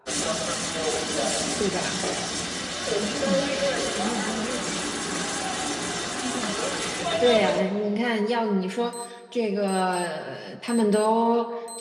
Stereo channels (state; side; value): identical; both; correlation 1.00